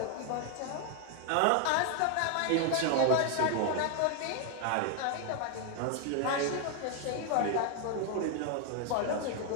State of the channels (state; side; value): different; both; correlation 0.00